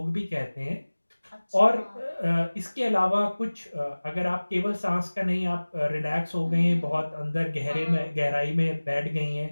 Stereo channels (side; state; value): both; inverted; correlation -1.00